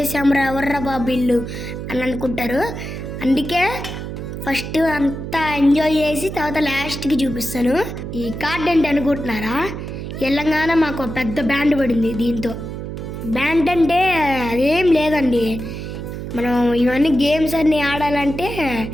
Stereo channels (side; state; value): right; noise; hum, 7 dB below the sound